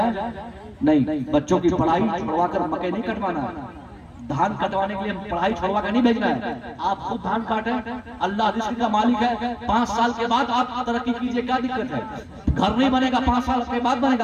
नहीं, बच्चों की पढ़ाई छुड़वा कर मक्के नहीं कटवाना है। धान कटवाने के लिए पढ़ाई छोड़वा के नहीं भेजना है, आप खुद धान काटें, अल्लाह रिस्क का मालिक है। 5 साल के बाद आप तरक्की कीजिए, क्या दिक्कत है? घर नहीं बनेगा, 5 साल के बाद बनेगा,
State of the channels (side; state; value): both; identical; correlation 1.00